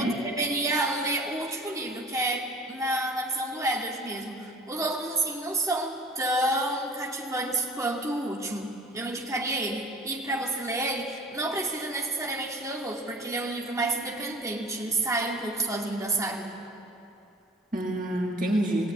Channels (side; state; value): both; normal; correlation 0.44